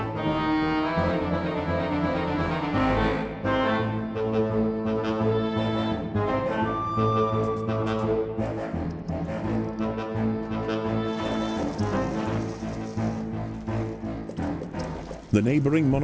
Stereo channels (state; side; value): identical; both; correlation 1.00